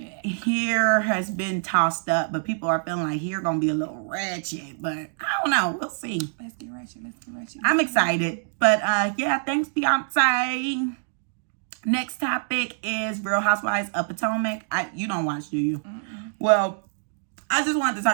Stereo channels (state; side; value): silent; left; digital silence